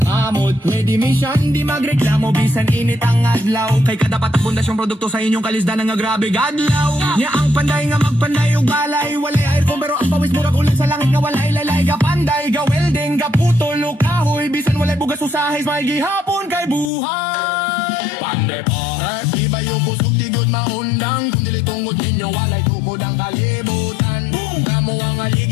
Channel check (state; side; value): drops out; right; at 16.9 s